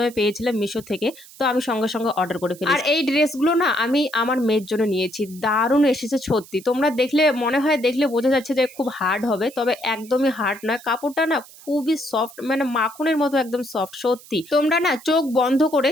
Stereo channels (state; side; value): noise; right; hiss, 21 dB below the sound